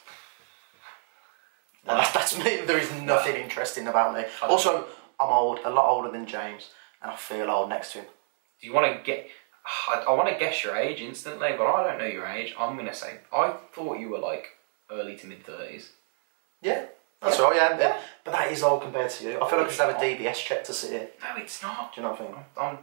No, that's me. There is nothing interesting about me. Also, I'm old, a lot older than James, and I feel old next to him. Do you want to get... I want to guess your age instantly, but I don't know your age. I'm going to say, I thought you were like early to mid-30s. Yeah, that's right, yeah. But that is old compared to you. I feel like I should have a DBS check to sit here. No, it's not. Do you know what I think? I'm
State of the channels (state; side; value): silent; left; 59 dB below the other